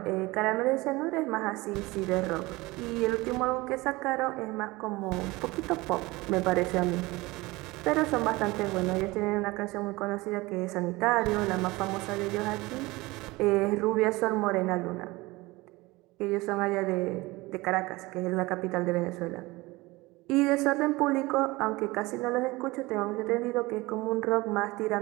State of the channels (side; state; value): left; quieter; 21.6 dB